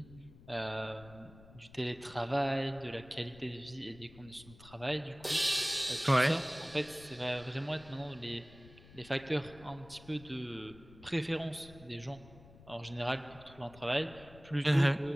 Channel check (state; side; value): noise; left; rumble, 21 dB below the sound